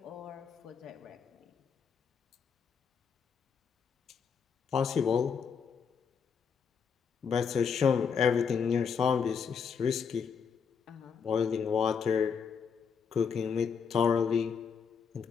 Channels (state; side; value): quieter; right; 6.5 dB